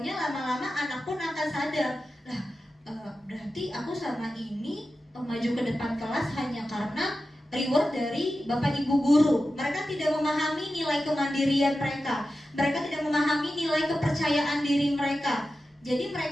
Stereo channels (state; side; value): normal; both; correlation 0.92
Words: lama-lama anak pun akan sadar, lah berarti aku selama ini maju ke depan kelas hanya karena reward dari Bapak Ibu Guru. Mereka tidak memahami nilai kemandirian mereka, mereka tidak memahami nilai kepercayaan diri mereka. Jadi